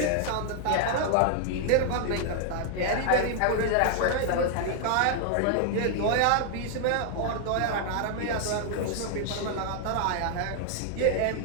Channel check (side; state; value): both; different; correlation 0.00